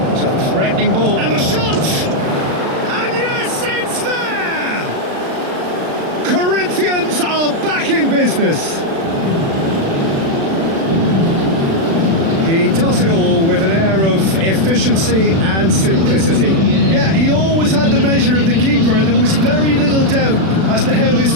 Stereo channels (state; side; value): late; left; 36 ms